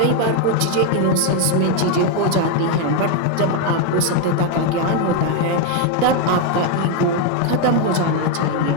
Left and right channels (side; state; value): both; different; correlation 0.01